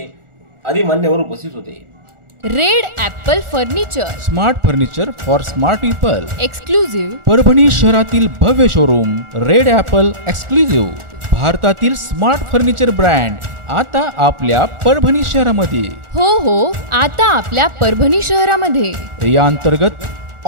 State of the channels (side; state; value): left; late; 1.4 ms